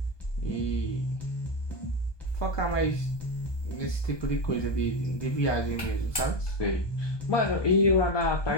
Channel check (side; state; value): right; late; 1.2 ms